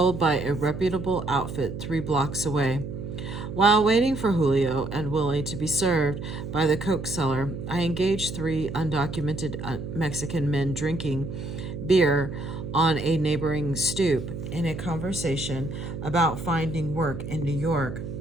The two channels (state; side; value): noise; right; hum, 8 dB below the sound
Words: by a reputable outfit 3 blocks away. While waiting for Julio and Willie to be served by the coke seller, I engaged 3 undocumented Mexican men drinking beer on a neighboring stoop in a conversation about finding work in New York.